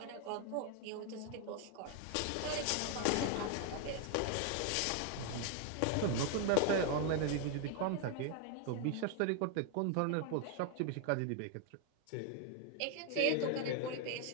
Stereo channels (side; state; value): both; different; correlation 0.01